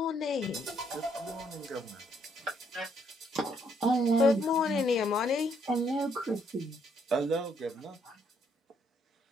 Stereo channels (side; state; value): both; normal; correlation 0.71